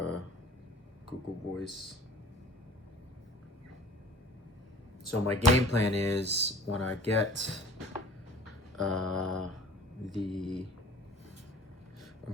Google Voice. So my game plan is when I get I'm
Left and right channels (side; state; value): both; normal; correlation 0.47